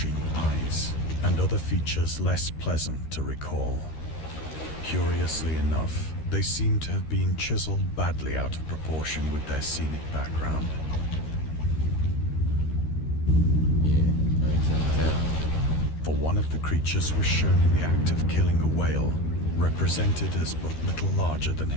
eyes, and other features less pleasant to recall. Curiously enough, they seem to have been chiseled badly out of proportion with their scenic background. Yeah, I can tell. For one of the creatures was shown in the act of killing a whale, represented as but little larger than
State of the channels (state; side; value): late; right; 13 ms